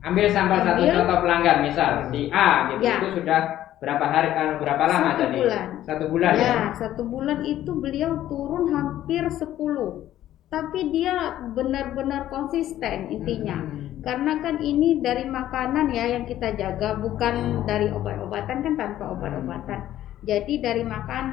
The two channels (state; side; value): quieter; right; 12.9 dB